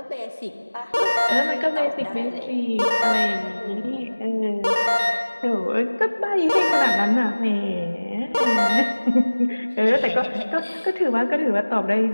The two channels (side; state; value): both; inverted; correlation -1.00